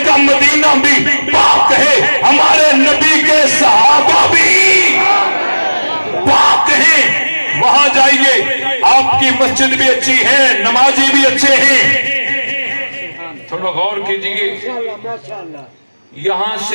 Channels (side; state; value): both; inverted; correlation -1.00